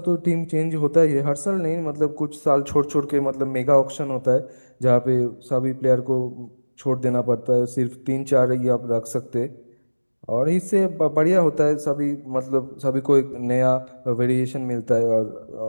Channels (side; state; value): both; inverted; correlation -1.00